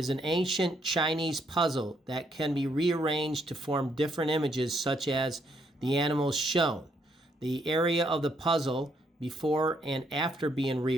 an ancient Chinese puzzle that can be rearranged to form different images such as the animals shown. The area of the puzzle before and after being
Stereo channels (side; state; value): both; normal; correlation 0.73